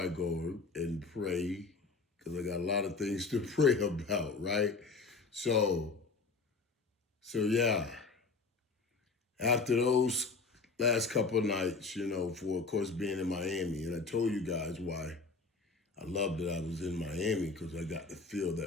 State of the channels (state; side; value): quieter; right; 4.1 dB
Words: I go and pray, because I got a lot of things to pray about, right? So, so yeah. After those last couple of nights, for of course being in Miami, and I told you guys why I loved that I was in Miami because I got to feel